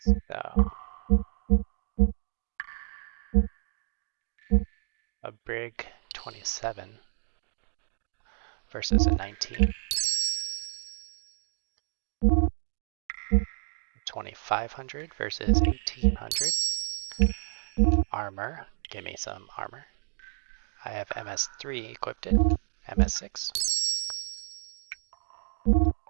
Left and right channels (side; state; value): left; silent; digital silence